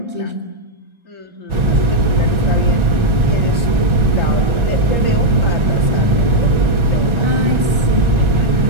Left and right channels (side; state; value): left; late; 1.4 ms